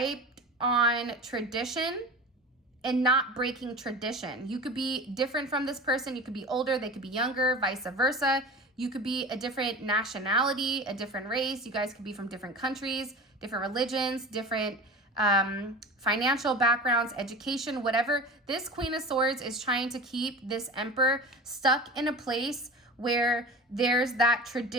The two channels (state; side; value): normal; both; correlation 0.34